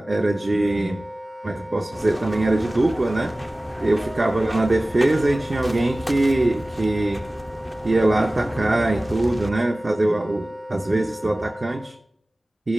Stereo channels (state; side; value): normal; both; correlation 0.97